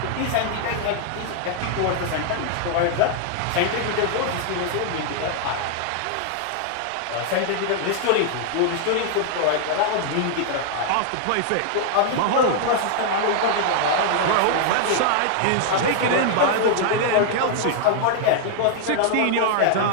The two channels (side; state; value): both; different; correlation 0.00